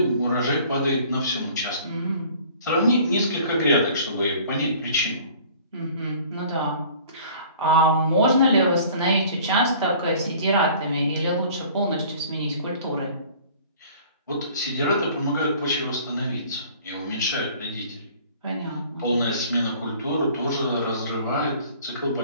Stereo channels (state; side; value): inverted; both; correlation -0.50